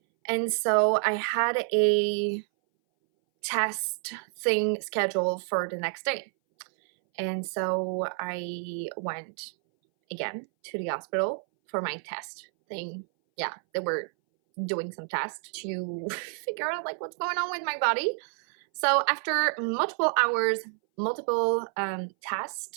And so I had a test thing scheduled for the next day. And so I went again to the hospital for my test thing. Yeah, they were doing some tests to figure out like what's going on with my body. So after multiple hours, multiple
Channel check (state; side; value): silent; left; 59 dB below the other